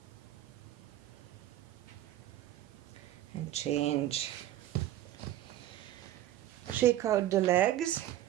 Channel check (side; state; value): left; quieter; 13.3 dB